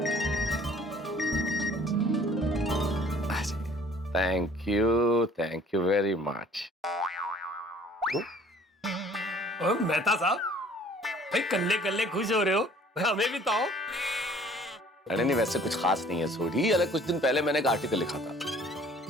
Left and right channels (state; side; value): normal; both; correlation 0.54